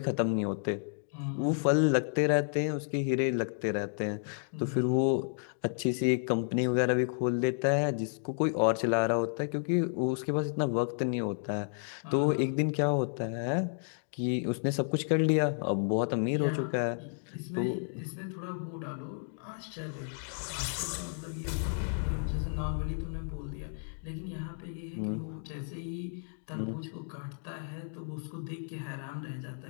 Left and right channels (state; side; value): silent; right; digital silence